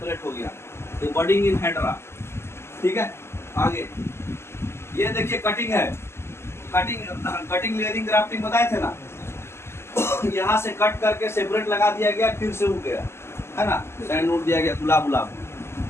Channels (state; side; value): late; right; 0.12 ms